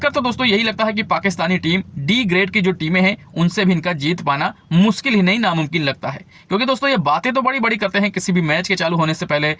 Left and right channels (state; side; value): identical; both; correlation 1.00